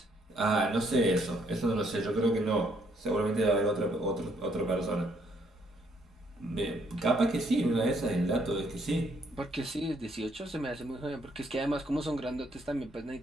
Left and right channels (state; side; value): normal; both; correlation 0.69